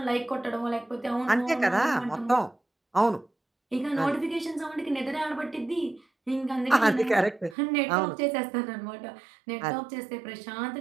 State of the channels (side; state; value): left; drops out; at 7.6 s